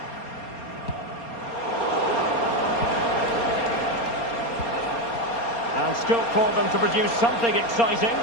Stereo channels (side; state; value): right; late; 4.3 ms